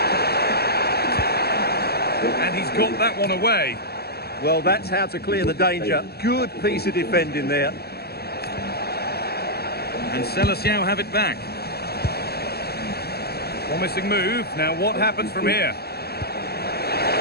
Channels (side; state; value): right; late; 0.46 ms